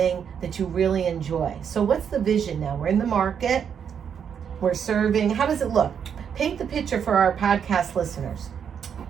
that you really enjoy. So what's the vision now? We're in the market. We're serving. How does it look? Paint the picture for our podcast listeners.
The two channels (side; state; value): left; quieter; 7.7 dB